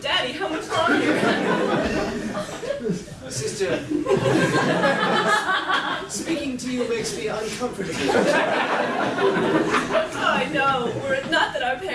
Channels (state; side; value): identical; both; correlation 1.00